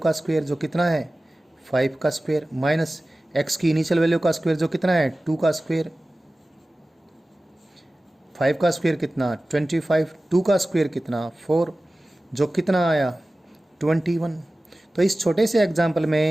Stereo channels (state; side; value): normal; both; correlation 0.96